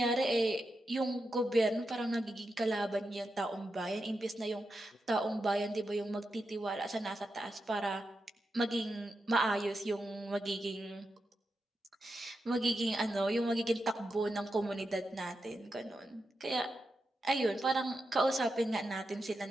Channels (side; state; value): both; normal; correlation 0.88